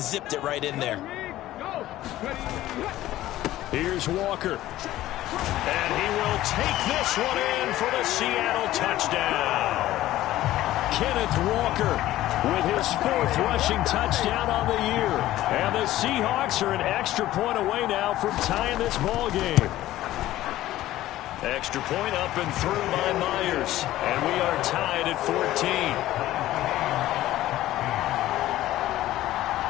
zipped it right in there. Here's Walker. And he will take this one in for the Seattle touchdown. Kenneth Walker with his 4th rushing touchdown on the year. And the Seahawks are an extra point away now from tying this ball game. Extra point up and through by Myers. And we are tied at 14.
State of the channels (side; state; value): right; quieter; 14.9 dB